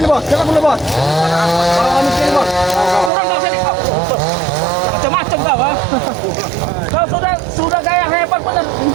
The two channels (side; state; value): left; drops out; at 3.1 s